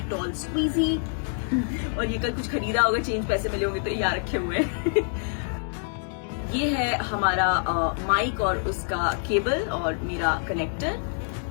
squeegee, और ये कल कुछ खरीदा होगा, चेंज पैसे मिले होंगे तो यहाँ रखे हुए हैं। ये है हमारा माइक और उसका केबल और मेरा कनेक्टर,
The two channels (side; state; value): right; silent; 61 dB below the other